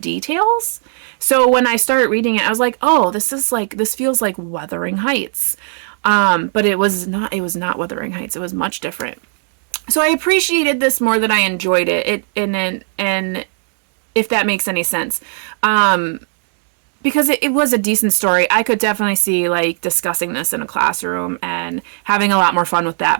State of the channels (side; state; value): left; silent; digital silence